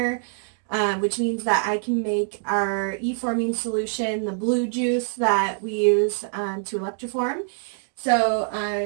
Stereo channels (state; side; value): silent; left; digital silence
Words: which means that I can make our E-forming solution, the blue juice that we use to electroform. So